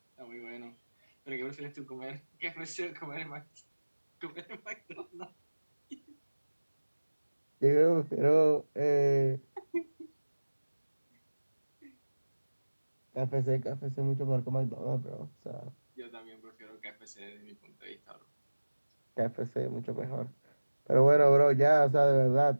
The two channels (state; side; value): inverted; both; correlation -1.00